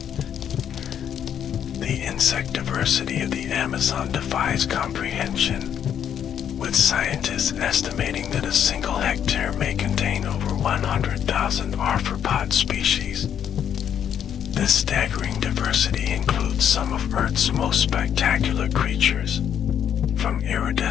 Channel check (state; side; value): quieter; right; 9.1 dB